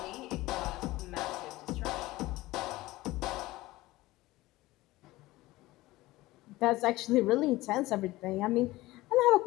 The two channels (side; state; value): right; quieter; 18.6 dB